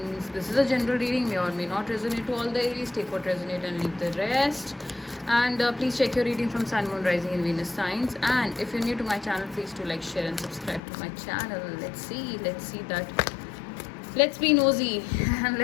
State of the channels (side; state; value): right; drops out; at 10.8 s